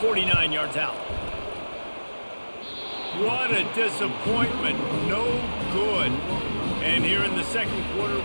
yards out. What a disappointment. No good. And here in the second quarter,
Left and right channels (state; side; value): inverted; both; correlation -1.00